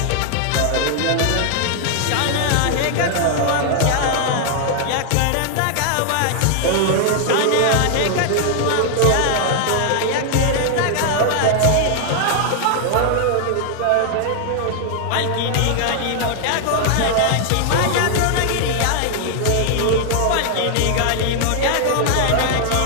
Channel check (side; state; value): both; different; correlation 0.00